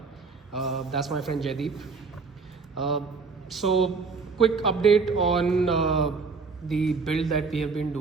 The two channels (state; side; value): quieter; left; 4.6 dB